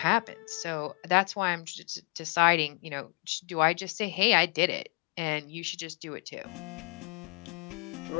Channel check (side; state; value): right; quieter; 31.8 dB